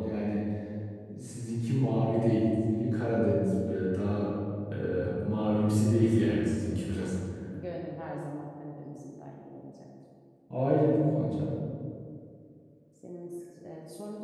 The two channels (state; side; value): identical; both; correlation 1.00